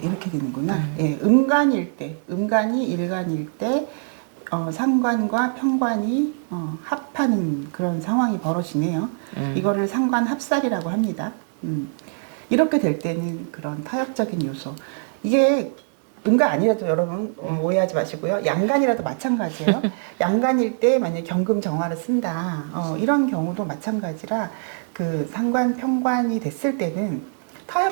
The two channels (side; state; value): left; silent; digital silence